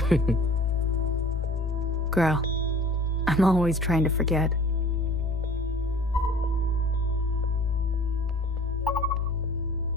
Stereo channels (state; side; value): normal; both; correlation 0.47